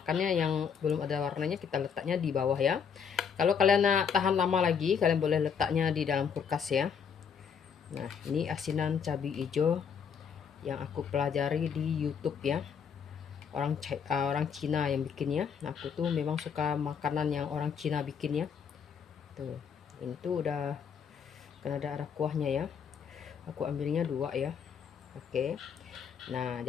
yang belum ada warnanya, kita letaknya di bawah ya. Kalau kalian nak tahan lama lagi, kalian boleh letaknya di dalam kulkas ya. Nah, ini asinan cabai hijau yang aku pelajari di YouTube ya. Orang Cina yang bikinnya. Nah, aku tuh memang suka makanan yang orang Cina bikin ya. Tuh, ini tuh udah kan ada kuahnya ya. Aku ambilnya 2 ya. Oke. Nah,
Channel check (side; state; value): right; quieter; 7.0 dB